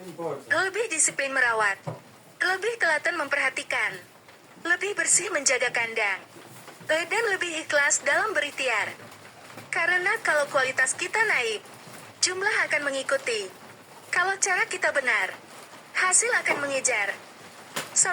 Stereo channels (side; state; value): both; identical; correlation 1.00